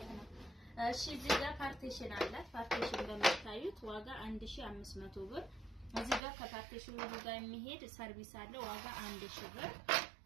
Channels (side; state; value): left; drops out; at 6.2 s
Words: ነው። እሺ እዚህ ጋር ፓርቲሽን አላት። ፓርቲሽን እንደምታዩት ዋጋ 1500 ብር። እዚህ ጋር ከፓርቲሽኑ ጋር የሚሄድ ሰርቪስ አለ ዋጋ 1000 ብር።